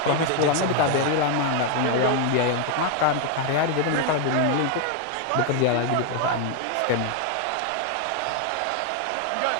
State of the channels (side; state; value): both; different; correlation 0.01